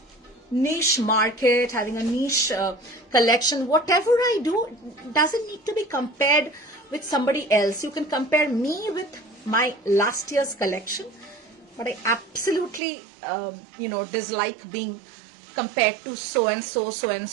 niche market, having a niche collection. Whatever I do doesn't need to be compared with somebody else. You can compare me with my last year's collection, but I absolutely dislike being compared to so and so.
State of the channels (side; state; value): left; drops out; at 12.8 s